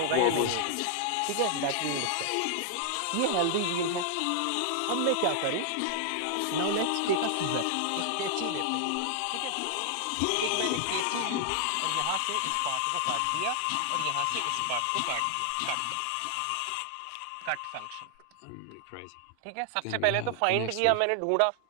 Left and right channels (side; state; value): both; different; correlation 0.00